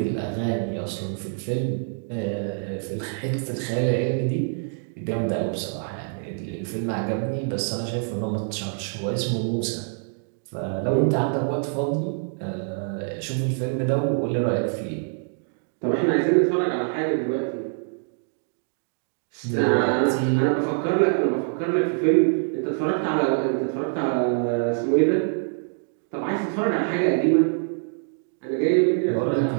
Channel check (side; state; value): left; silent; digital silence